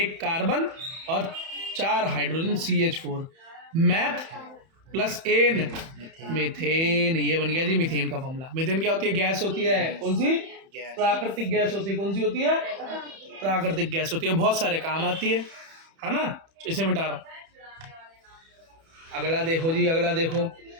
कार्बन और 4 hydrogen CH4, meth plus ane methane, ये बन गया जी मीथेन का फॉर्मूला। मीथेन क्या होती है गैस होती है, कौन सी प्राकृतिक गैस होती है, कौन सी होती है प्राकृतिक गैस होती है, बहुत सारे काम आती है ना। इसे मिटा रहा हूं, अगला देखो जी, अगला देखो।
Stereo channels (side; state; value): left; late; 31 ms